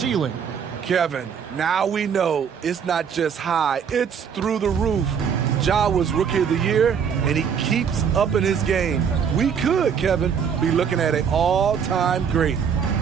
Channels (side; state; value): left; quieter; 7.3 dB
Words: Kevin, now we know it's not just high, it's through the roof. Ja was Rookie of the Year, and he keeps up in his game. We could, Kevin, be looking at an all-time great.